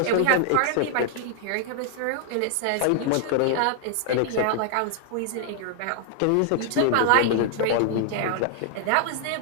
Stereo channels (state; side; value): different; both; correlation 0.00